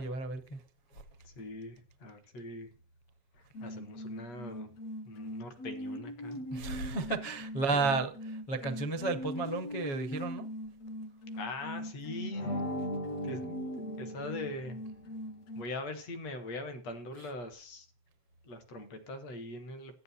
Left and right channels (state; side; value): late; right; 7.4 ms